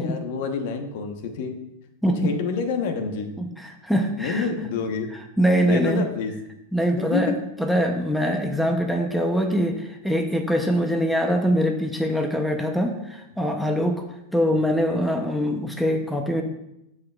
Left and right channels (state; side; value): normal; both; correlation 0.65